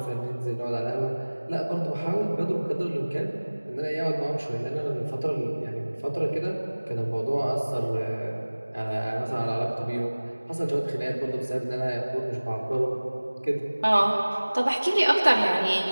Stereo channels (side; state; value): both; inverted; correlation -1.00